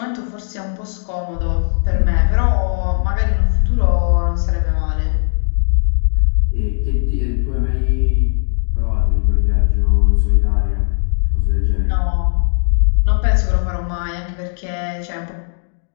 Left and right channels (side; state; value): right; silent; digital silence